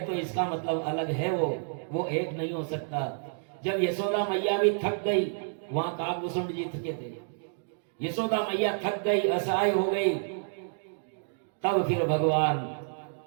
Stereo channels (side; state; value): left; silent; digital silence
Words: तो इसका मतलब अलग है, वो एक नहीं हो सकता। जब यशोदा मैया भी थक गई, वहां काकभूषुंड जी थके थे, यशोदा मैया थक गई, असहाय हो गई, तब फिर भगवान